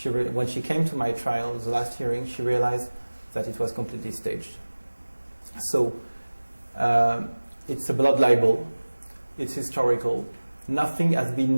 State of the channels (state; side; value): inverted; both; correlation -1.00